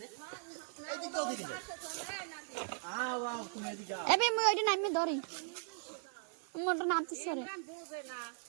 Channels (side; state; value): left; silent; 52 dB below the other